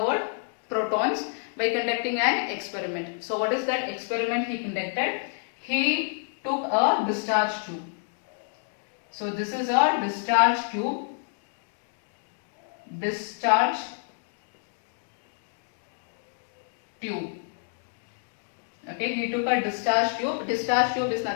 protons by conducting an experiment. So what is that experiment he conducted? He took a discharge tube. So this is a discharge tube. Discharge tube. Okay, he took a discharge tube. Discharge tube is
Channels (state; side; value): silent; right; 59 dB below the other